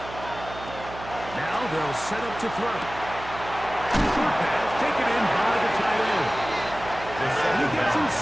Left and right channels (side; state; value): right; noise; hum, 13 dB below the sound